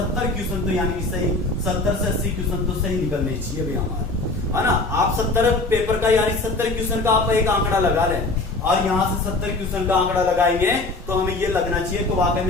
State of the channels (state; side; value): quieter; right; 3.2 dB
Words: क्वेश्चन तो यानी कि सही 70 से 80 क्वेश्चन तो सही निकलने चाहिए भाई हमारे, है ना। आप 70 पेपर का यानी 70 क्वेश्चन का आप एक आंकड़ा लगा लें और यहाँ से 70 क्वेश्चन का आंकड़ा लगाएंगे तो हमें ये लगना चाहिए तो वाकई